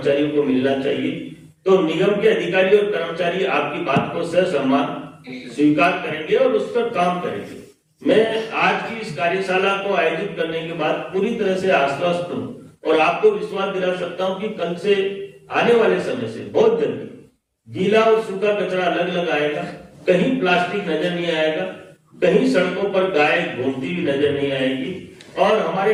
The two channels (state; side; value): identical; both; correlation 1.00